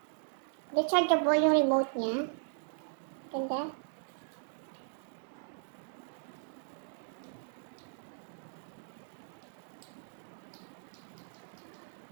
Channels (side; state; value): left; silent; digital silence